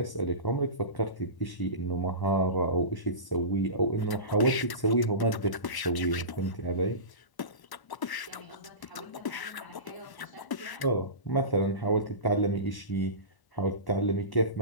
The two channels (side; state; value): right; late; 1.0 ms